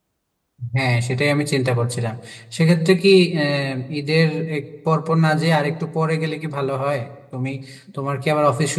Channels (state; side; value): identical; both; correlation 1.00